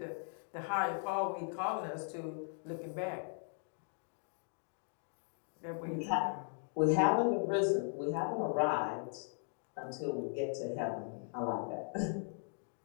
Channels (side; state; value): right; silent; 52 dB below the other